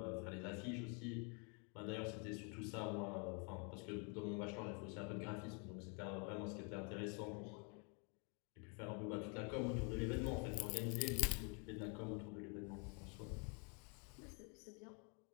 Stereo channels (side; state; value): right; quieter; 36.8 dB